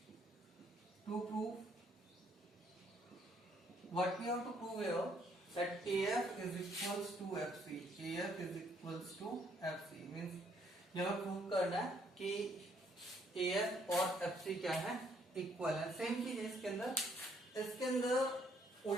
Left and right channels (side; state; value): both; normal; correlation 0.68